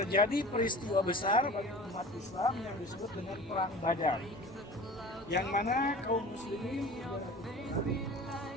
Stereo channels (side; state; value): both; normal; correlation 0.39